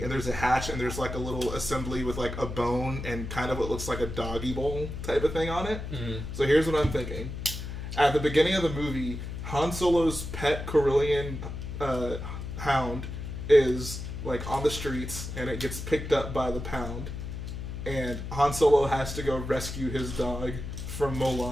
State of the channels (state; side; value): noise; left; hum, 7 dB below the sound